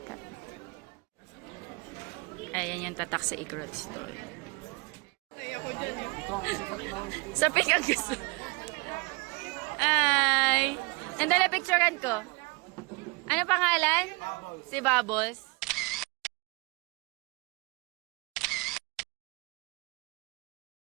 Ayan yung tatak sa Igorot store. Sa pick ang gusto. Ay! Nandala picturean ko. Ano pangalan? Si Bubbles.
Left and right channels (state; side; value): quieter; left; 28.4 dB